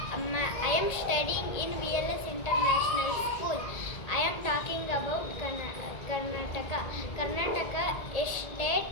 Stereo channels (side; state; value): right; late; 1.8 ms